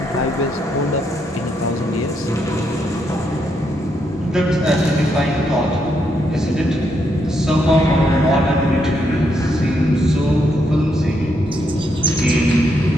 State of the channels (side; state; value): both; normal; correlation 0.78